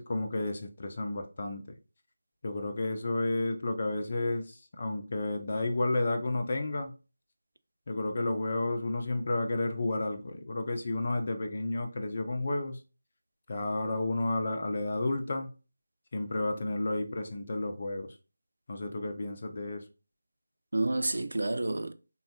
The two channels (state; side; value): inverted; both; correlation -0.94